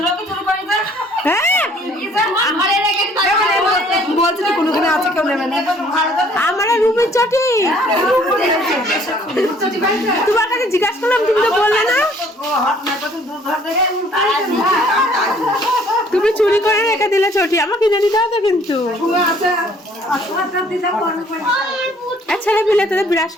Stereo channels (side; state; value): both; normal; correlation 0.59